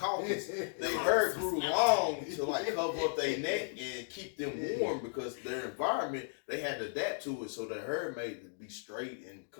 Their hair grew long to like cover up their neck and keep them warm because their environment they had to adapt to it. So their hair made it be straight and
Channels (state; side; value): silent; right; digital silence